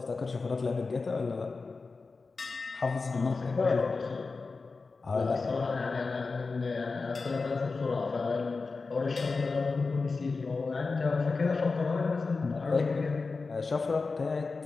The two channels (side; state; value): right; quieter; 4.2 dB